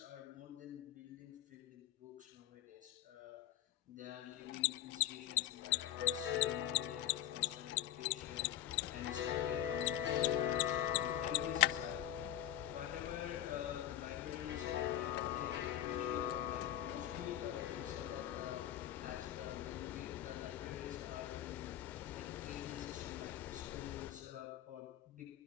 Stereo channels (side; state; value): right; quieter; 12.3 dB